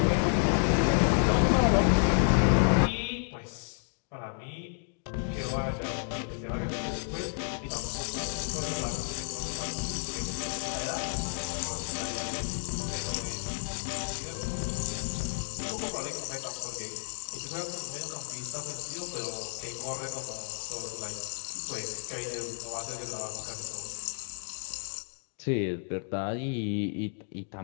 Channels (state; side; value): silent; right; 57 dB below the other